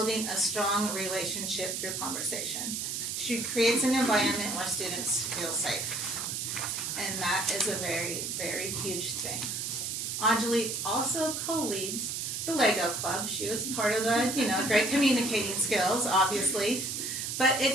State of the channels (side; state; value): right; noise; hiss, 3 dB below the sound